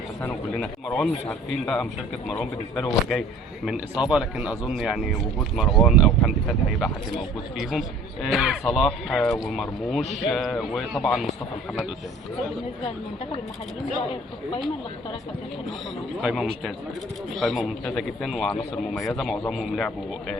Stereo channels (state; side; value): normal; both; correlation 0.50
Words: وكلنا. مروان مش عارفين بقى مشاركه مروان بالنسبه له، هو جاي من اصابه، لكن اظن يعني وجود مروان او حمدي فتحي هيبقى حد موجود فيهم. صلاح ومرموش وطبعا مصطفى محمد قدام. بالنسبه للمنتخب المحليين رايك في القائمه اللي اختارها كابتن حلمي؟ قائمه ممتازه، قائمه ممتازه جدا وعناصر مميزه، معظمهم لعبوا